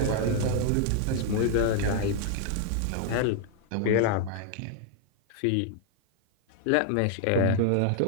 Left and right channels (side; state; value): both; different; correlation 0.00